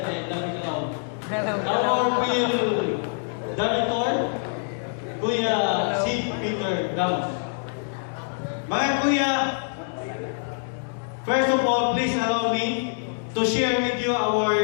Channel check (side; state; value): right; silent; 62 dB below the other